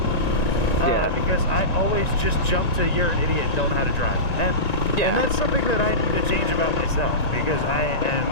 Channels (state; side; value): late; right; 1.9 ms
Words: Because I always just jump to you're an idiot and don't know how to drive. And that's something that I need to change about myself because I